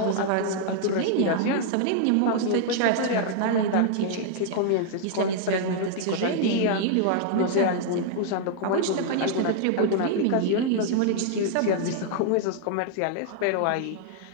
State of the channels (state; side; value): different; both; correlation -0.01